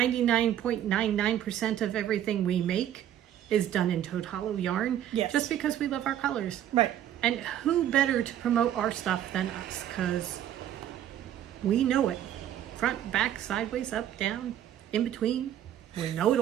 of everything we make is done in Toad Hollow yarn. Yes. Just because we love our colors. Right. And who better to promote our stuff than us? Because we know it. Front, back, sideways, up, down, in between. We know it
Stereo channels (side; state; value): left; quieter; 11.1 dB